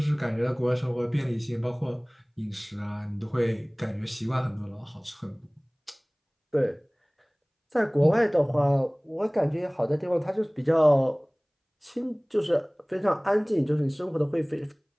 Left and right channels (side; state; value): both; identical; correlation 1.00